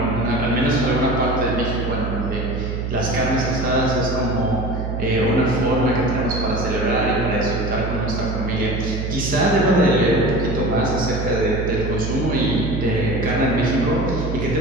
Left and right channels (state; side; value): noise; right; hum, 3 dB below the sound